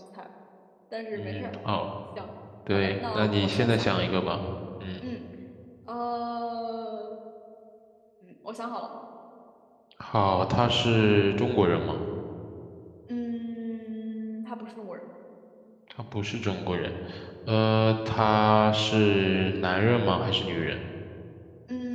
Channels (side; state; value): both; identical; correlation 1.00